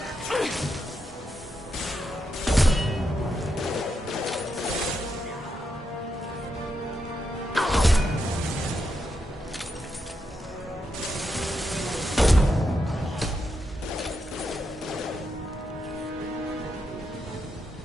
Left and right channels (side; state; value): both; normal; correlation 0.83